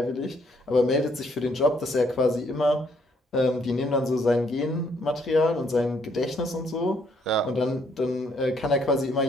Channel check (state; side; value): normal; both; correlation 0.69